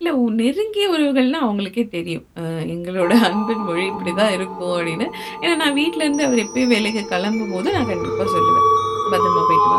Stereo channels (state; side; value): identical; both; correlation 1.00